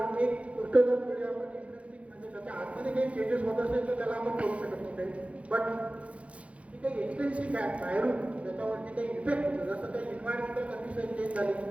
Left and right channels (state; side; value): late; left; 0.063 ms